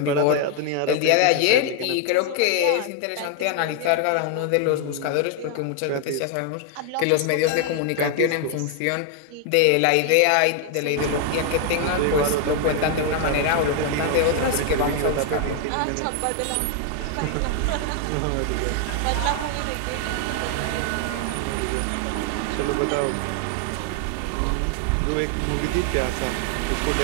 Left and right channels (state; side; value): different; both; correlation 0.00